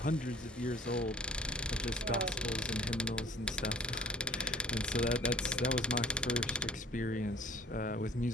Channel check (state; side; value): normal; both; correlation 0.48